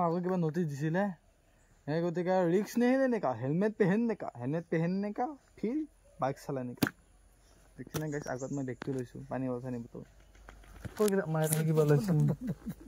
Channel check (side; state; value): both; identical; correlation 1.00